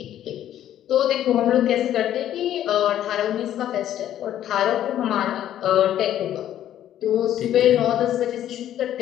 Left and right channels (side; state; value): right; quieter; 11.6 dB